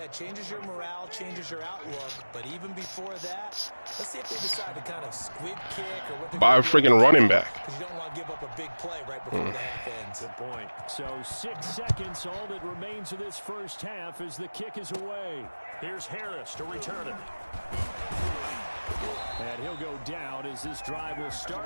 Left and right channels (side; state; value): both; inverted; correlation -1.00